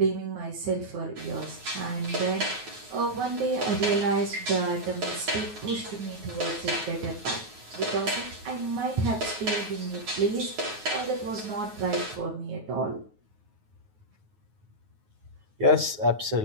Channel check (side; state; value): left; late; 9.4 ms